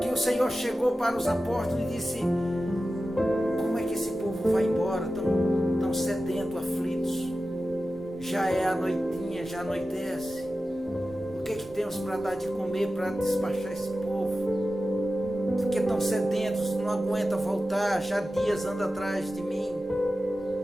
Que o Senhor chegou para os apóstolos e disse: como é que esse povo vai embora tão sedento, aflitos? Já é a noitinha, já anoitece. O que temos para dar de comer para despachar esse povo? Porque estão sedentos, não aguenta voltar, já dias anda atrás de mim.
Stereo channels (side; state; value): both; normal; correlation 0.94